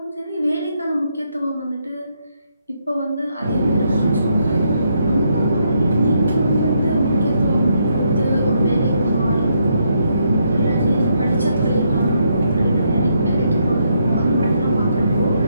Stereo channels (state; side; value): inverted; both; correlation -0.76